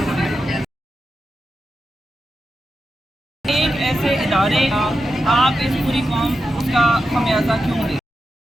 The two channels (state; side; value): normal; both; correlation 0.89